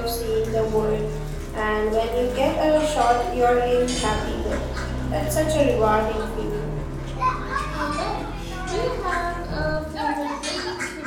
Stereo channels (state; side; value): identical; both; correlation 1.00